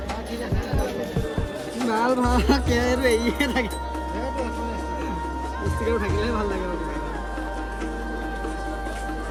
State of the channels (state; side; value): identical; both; correlation 1.00